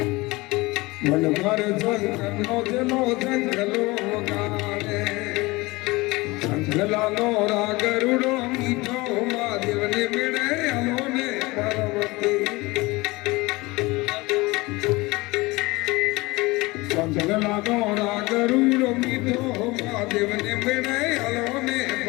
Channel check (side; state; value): right; quieter; 22.5 dB